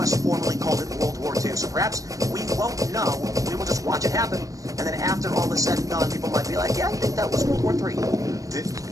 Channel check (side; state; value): left; late; 0.16 ms